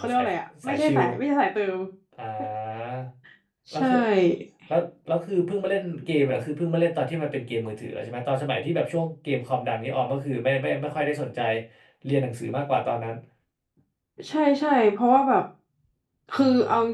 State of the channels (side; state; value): both; identical; correlation 1.00